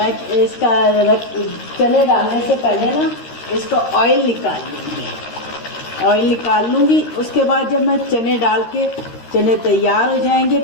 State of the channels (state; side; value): late; right; 13 ms